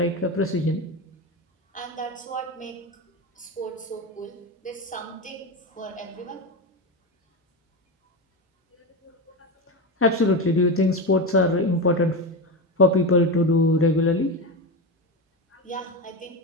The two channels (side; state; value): both; normal; correlation 0.18